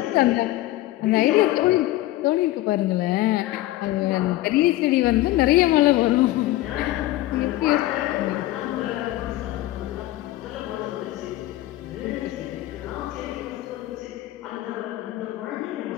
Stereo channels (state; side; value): quieter; right; 16.3 dB